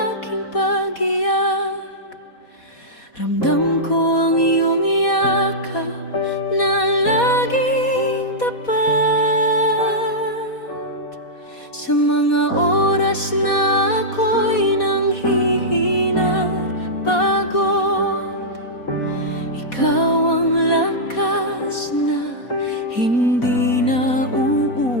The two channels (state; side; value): late; right; 4.2 ms